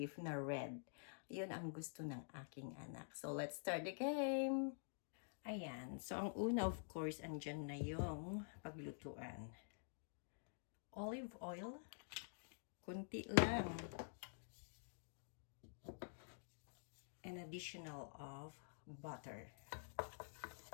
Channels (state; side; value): silent; right; digital silence